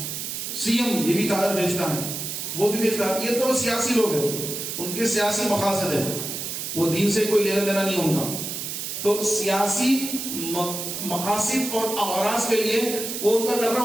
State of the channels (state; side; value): noise; right; hiss, 5 dB below the sound